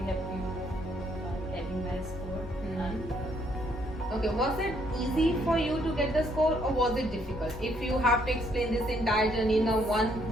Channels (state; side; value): normal; both; correlation 0.70